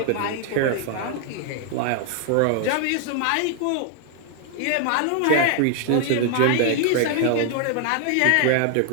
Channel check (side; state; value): both; different; correlation 0.00